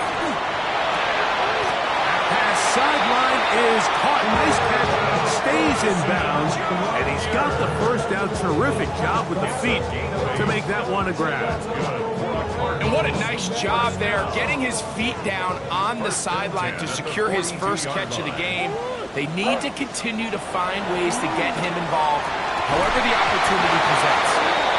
Pass sideline is caught. Nice catch. Stays in bounds. And he's got the first down. Terrific job with the feet to make that one a grab. And what a nice job there, getting his feet down on the sideline to secure his first catch of the game. They need to continue to find ways to get him involved, however the opportunity presents.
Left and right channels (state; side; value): identical; both; correlation 1.00